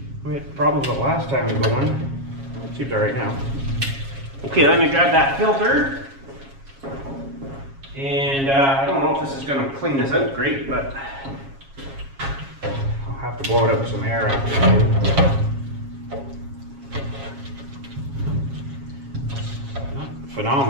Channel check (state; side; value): late; left; 7.3 ms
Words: We had problems with it last time we go on. It seems all right now. Okay, let me grab that filter. And I don't know if this is going to clean this out great, but I'll have to blow it up with some air after. Not